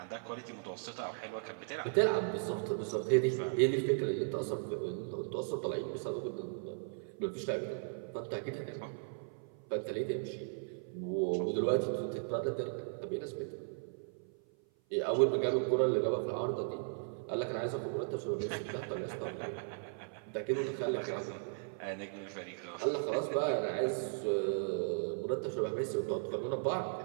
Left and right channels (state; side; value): silent; left; 53 dB below the other